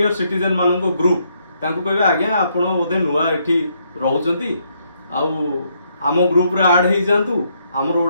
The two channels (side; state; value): both; inverted; correlation -0.74